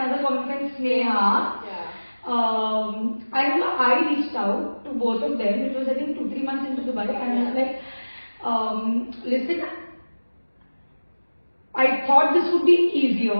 common friend Sneha. Yeah. I remember I reached out to both of them. It was I think 2-3 months into Dubai, and I was like, listen, I thought this would be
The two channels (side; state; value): both; inverted; correlation -1.00